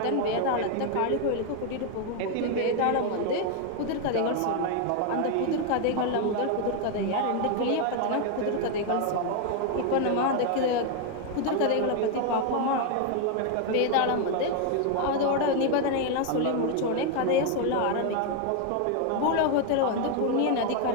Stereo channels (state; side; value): different; both; correlation 0.01